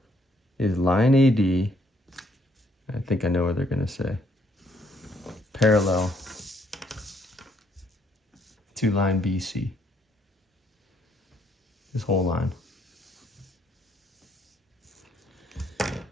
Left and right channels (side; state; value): both; normal; correlation 0.69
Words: Is line AD, I think I know what they're going to say, parallel to line BC. This whole line.